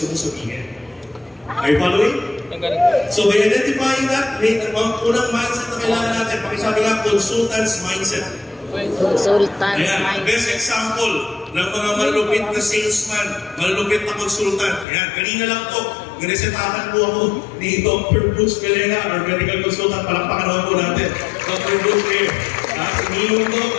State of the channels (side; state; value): right; drops out; at 14.9 s